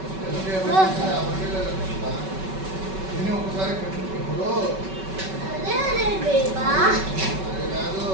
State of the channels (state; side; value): late; left; 5.3 ms